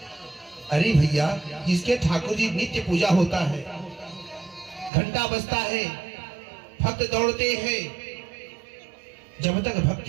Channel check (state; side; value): drops out; left; at 4.9 s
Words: अरे भैया, जिसके ठाकुर जी नित्य पूजा होता है, घंटा बजता है, भक्त दौड़ते हैं, जब तक